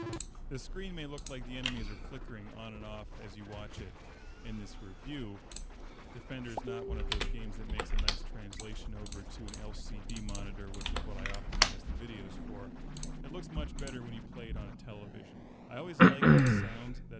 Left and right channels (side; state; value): both; identical; correlation 1.00